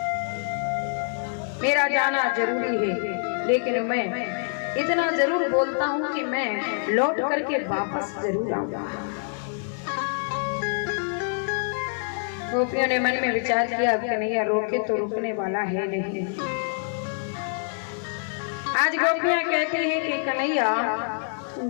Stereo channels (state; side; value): silent; right; 61 dB below the other